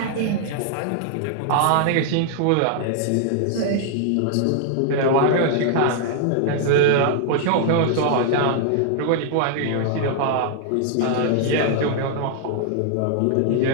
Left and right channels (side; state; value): both; different; correlation -0.01